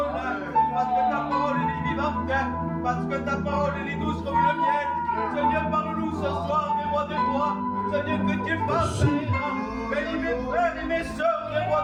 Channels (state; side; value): identical; both; correlation 1.00